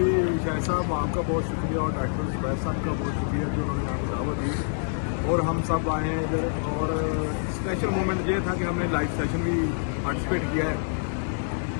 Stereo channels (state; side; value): silent; right; digital silence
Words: شاہ صاحب، آپ کا بہت شکریہ اور ڈاکٹر زبیر صاحب کا بہت شکریہ جو انہوں نے ہمیں دعوت دی اور ہم سب آئے ہیں ادھر۔ اور اسپیشل مومنٹ یہ تھا کہ ہم نے لائیو سیشن بھی پارٹیسپیٹ کیا ہے۔